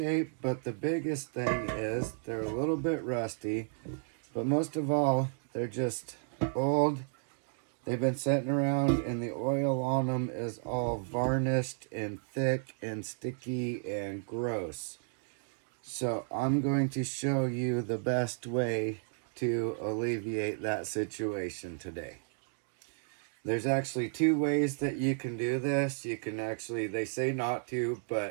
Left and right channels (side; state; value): left; silent; digital silence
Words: but the biggest thing is they're a little bit rusty. But most of all, they're just old. They've been sitting around and the oil on them is all varnished and thick and sticky and gross. So I'm going to show you the best way to alleviate that situation today. There's actually two ways that you can do this. You can actually, they say not to,